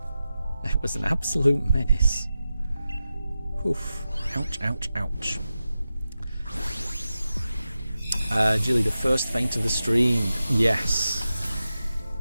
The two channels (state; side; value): inverted; both; correlation -0.91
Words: It was an absolute menace. Oof. Ouch, ouch, ouch. Jilly, the first feint of the stream. Yes.